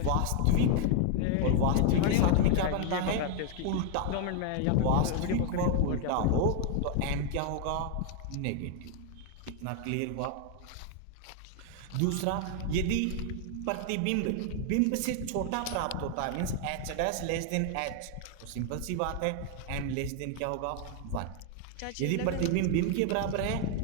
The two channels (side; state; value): both; different; correlation 0.00